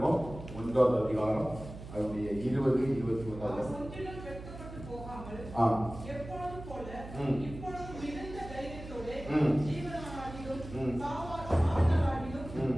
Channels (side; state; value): right; noise; hum, 13 dB below the sound